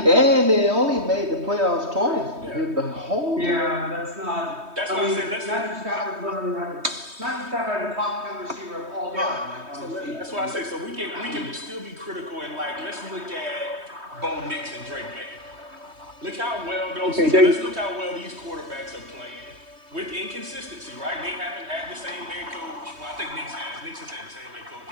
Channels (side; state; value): left; late; 3.2 ms